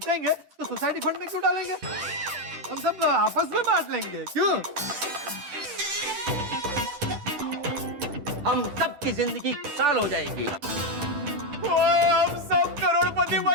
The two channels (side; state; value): left; late; 10 ms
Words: तो सोसाइटी फंड में क्यों डालेंगे? हम सब आपस में बांट लेंगे, क्यों? हम सब की जिंदगी खुशहाल हो जाएगी। हम सब करोड़पति